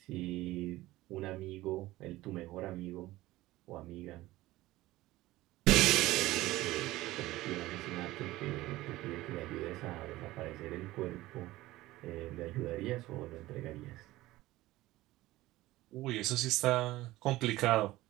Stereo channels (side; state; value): left; quieter; 17.5 dB